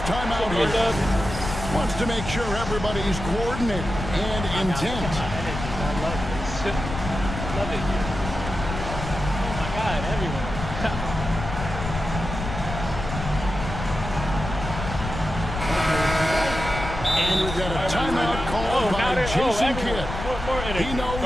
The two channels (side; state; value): left; noise; rumble, 7 dB below the sound